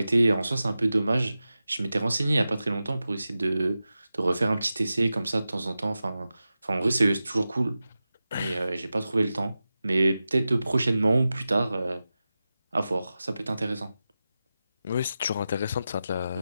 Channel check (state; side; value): inverted; both; correlation -0.93